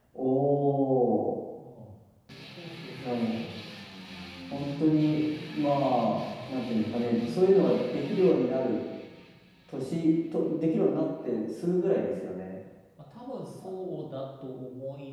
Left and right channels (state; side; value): identical; both; correlation 1.00